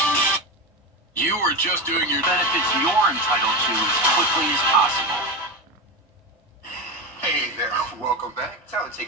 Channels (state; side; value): normal; both; correlation 0.19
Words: You are just doing your benefits you're entitled to as quickly as possible. Hey there, welcome back. Time to